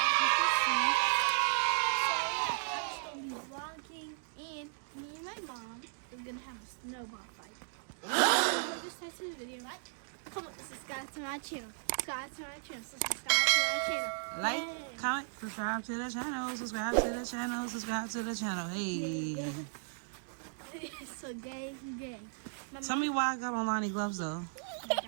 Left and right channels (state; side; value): silent; left; digital silence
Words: just gonna be vlogging, and me and my mom are gonna have a snowball fight. So just type to the video, right? Come on, subscribe to my channel. Subscribe to my channel. Subscribe to my channel. Like, comment, subscribe to the channel. Subscribe to the channel. Subscribe to the channel. Hey. So gay. Tell me why I got on Lonnie gloves though.